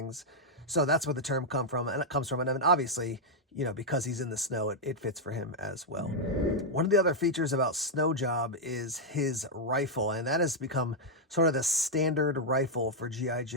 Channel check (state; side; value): normal; both; correlation -0.02